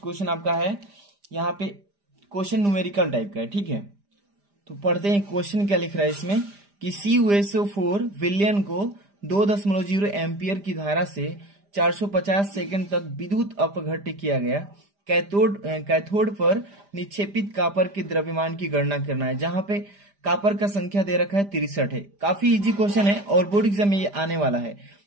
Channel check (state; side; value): late; left; 5.0 ms